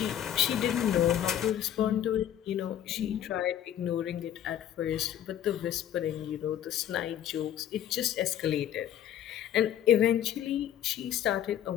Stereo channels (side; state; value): right; quieter; 10.7 dB